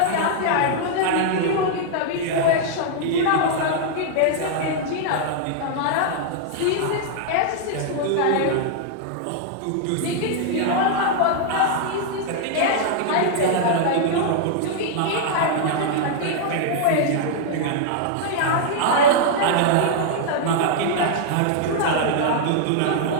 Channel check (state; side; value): different; both; correlation -0.01